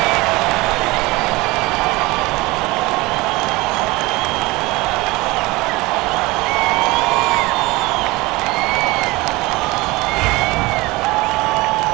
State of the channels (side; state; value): left; quieter; 21.9 dB